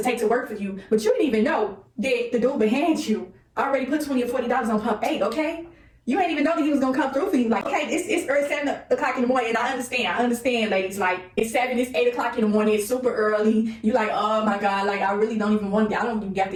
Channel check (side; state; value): both; identical; correlation 1.00